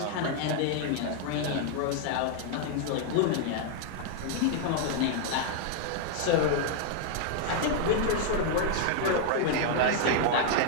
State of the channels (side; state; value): both; different; correlation 0.00